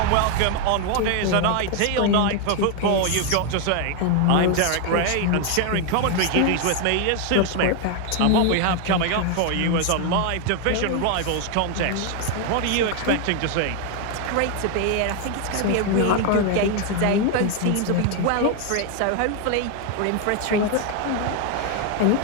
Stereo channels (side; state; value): both; different; correlation 0.01